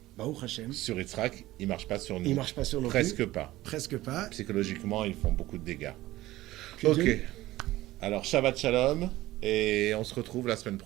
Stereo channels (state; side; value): quieter; left; 16.8 dB